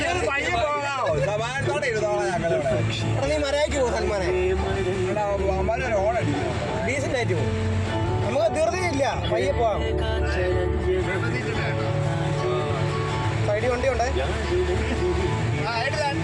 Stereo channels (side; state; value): both; identical; correlation 1.00